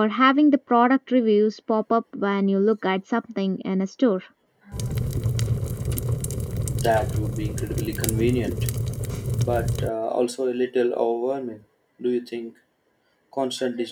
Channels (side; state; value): both; identical; correlation 1.00